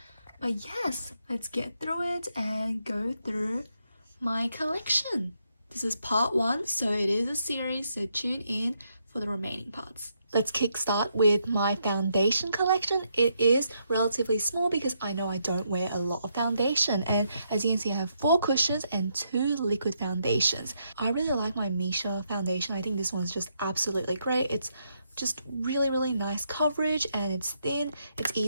But yes, let's get through it and go through my collection. This is part 1, so it is a series, so tune in for the remaining parts. Let's kickstart with my foundation collection. It is relatively small because I know I don't wear a lot of foundation, and as you can see I have 4 cushions and 2 liquid foundations. I really like my Misha foundation. I think this one's just absolutely great. It's just really nice coverage and it's thin, it's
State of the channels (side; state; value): both; inverted; correlation -0.78